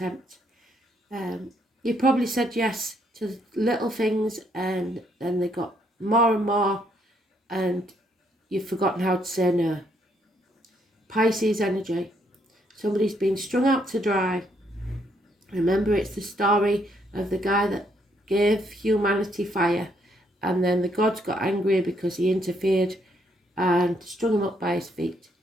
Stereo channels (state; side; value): normal; both; correlation 0.71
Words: You probably said yes to little things and then they got more and more and you've forgotten how to say no. Pisces energy. Somebody's been strung out to dry. Remember, it's the story of the guy that gave humanity fire, and then the gods got angry because he interfered and strung him up by his feet.